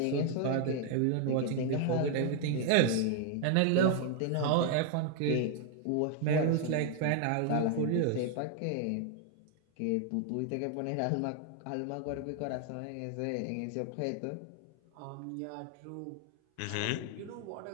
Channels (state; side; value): different; both; correlation 0.00